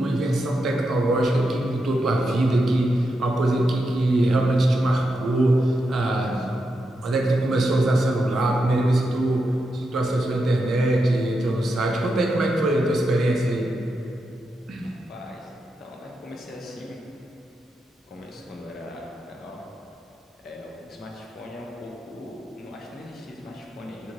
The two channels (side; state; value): both; normal; correlation 0.86